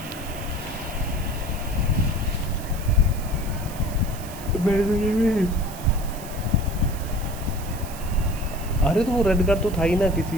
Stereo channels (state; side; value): noise; right; hiss, 15 dB below the sound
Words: मेरे तो ये भी, अरे तो वो रेड कार्ड तो था ही ना किसी